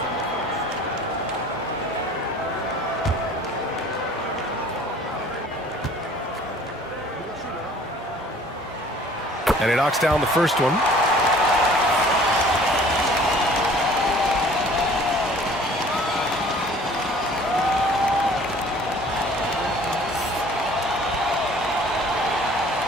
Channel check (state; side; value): normal; both; correlation 0.51